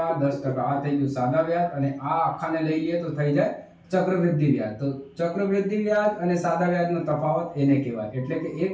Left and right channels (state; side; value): identical; both; correlation 1.00